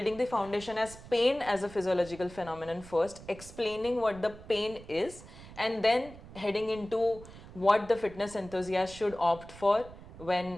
the foundation as pain as a physiological phenomenon first, explaining what the pain is, and then heading into what the fitness enthusiast should opt for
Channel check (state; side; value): noise; right; rumble, 17 dB below the sound